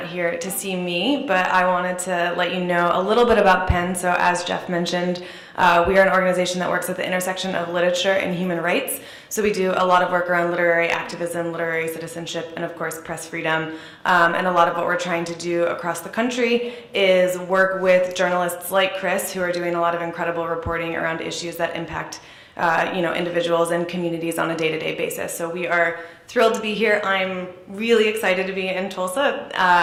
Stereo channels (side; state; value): both; identical; correlation 1.00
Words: here to see me, but I wanted to let you know a little bit about PEN. So as Jeff mentioned, we are an organization that works at the intersection of literature and human rights. So we do a lot of work around literary activism, literary citizenship, and of course press freedom. And a lot of what we're trying to do across the country is work with journalists like Chris, who are doing a lot of incredible reporting around issues that impact individuals and communities on a day-to-day basis. So we are thrilled to be here. I'm really excited to be in Tulsa.